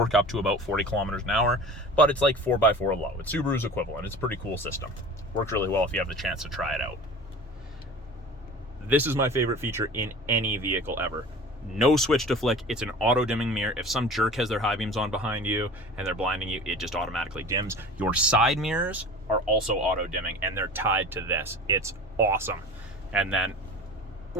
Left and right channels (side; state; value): both; normal; correlation 0.39